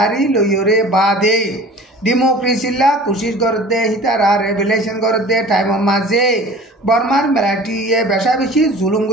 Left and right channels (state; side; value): normal; both; correlation 0.43